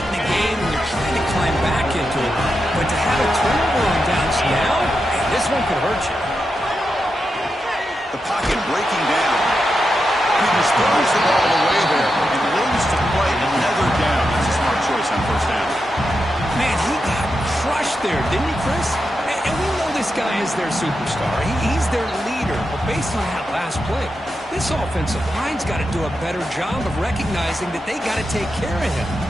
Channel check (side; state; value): both; normal; correlation 0.87